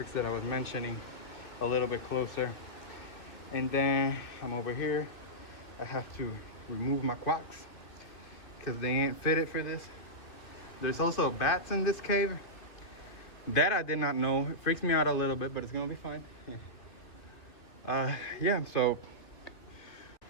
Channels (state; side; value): late; right; 2.6 ms